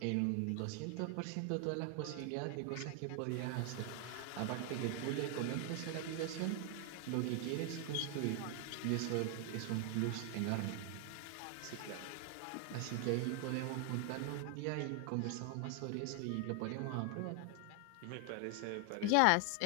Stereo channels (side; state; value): both; different; correlation 0.00